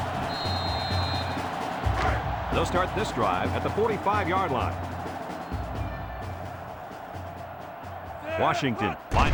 They'll start this drive at the 45-yard line. Washington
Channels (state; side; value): identical; both; correlation 1.00